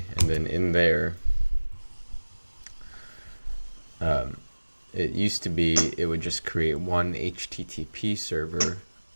and then in there, It used to be it would just create one HTTP server.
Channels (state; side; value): inverted; both; correlation -1.00